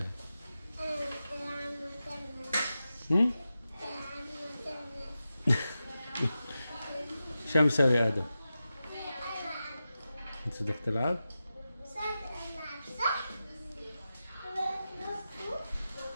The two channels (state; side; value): inverted; both; correlation -0.92